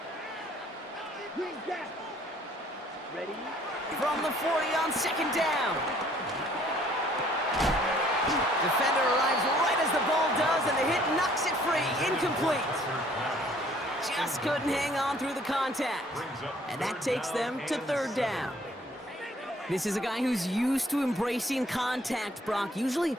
Green gap. Ready. From the 40 on second down. Defender arrives right as the ball does, and the hit knocks it free. Incomplete. Just couldn't hang on through the contact. And that takes them to third down. This is a guy who's used to embracing contact, Brock. Usually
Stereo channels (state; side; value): normal; both; correlation 0.59